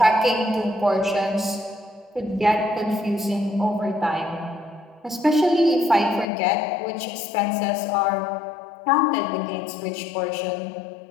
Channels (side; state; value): right; drops out; at 6.2 s